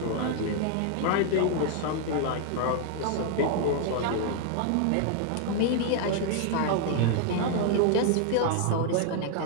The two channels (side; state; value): both; different; correlation 0.00